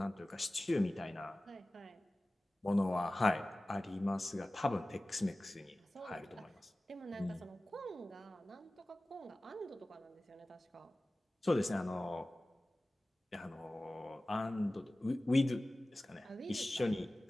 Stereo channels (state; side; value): normal; both; correlation 0.97